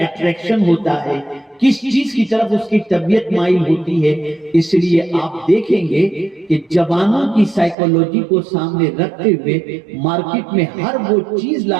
ہوتا ہے، کس چیز کی طرف اس کی طبیعت مائل ہوتی ہے۔ اس لیے آپ دیکھیں گے کہ جوانوں کی سائیکولوجی کو سامنے رکھتے ہوئے مارکیٹ میں ہر وہ چیز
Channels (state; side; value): drops out; left; at 7.8 s